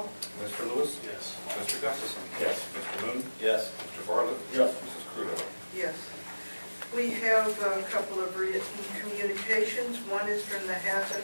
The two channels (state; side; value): inverted; both; correlation -1.00